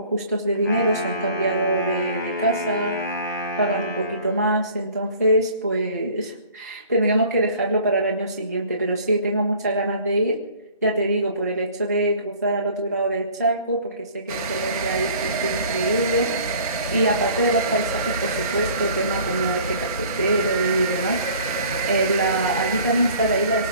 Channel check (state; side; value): inverted; both; correlation -0.50